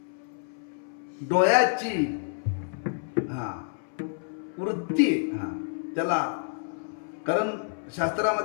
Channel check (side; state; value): right; silent; 59 dB below the other